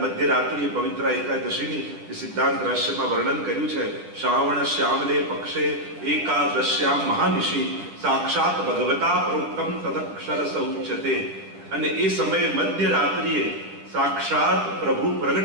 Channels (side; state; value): left; late; 10 ms